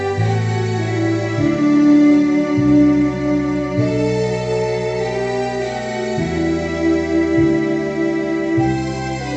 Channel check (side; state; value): both; identical; correlation 1.00